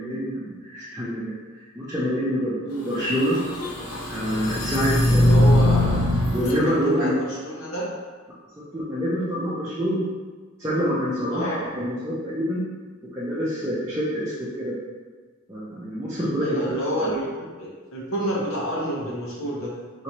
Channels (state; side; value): normal; both; correlation 0.64